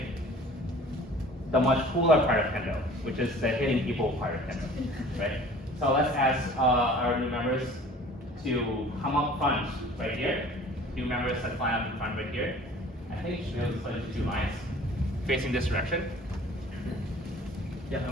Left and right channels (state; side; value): normal; both; correlation 0.48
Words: the much cooler part of Kendo, which is the hitting people part of Kendo, right? So let's ask our new members to come up front right here. New members that line up in front right here. I think you should be able to split into 2 lines facing this direction. Yeah,